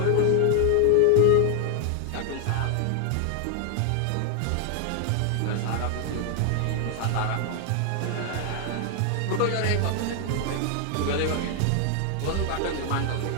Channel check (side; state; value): both; different; correlation 0.00